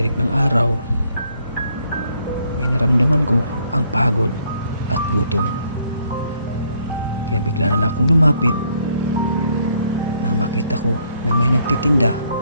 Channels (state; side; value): inverted; both; correlation -0.68